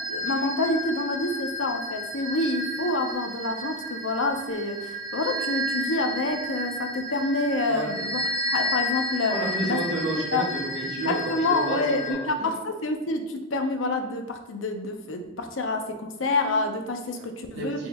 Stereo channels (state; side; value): normal; both; correlation 0.03